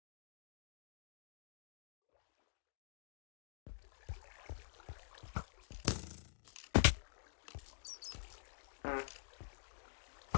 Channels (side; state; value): right; silent; digital silence